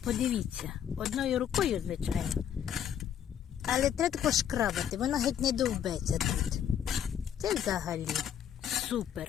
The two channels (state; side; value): quieter; right; 9.3 dB